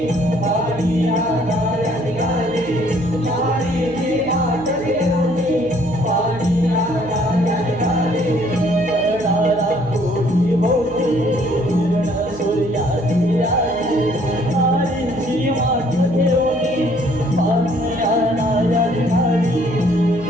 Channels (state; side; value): noise; right; hum, 16 dB below the sound